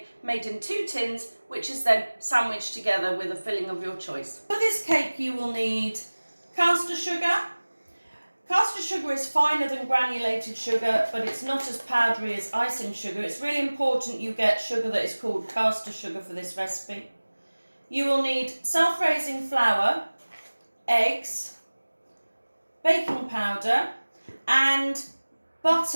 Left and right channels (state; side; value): inverted; both; correlation -1.00